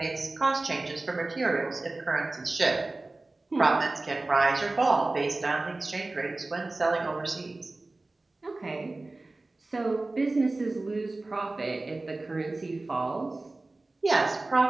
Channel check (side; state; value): left; quieter; 3.1 dB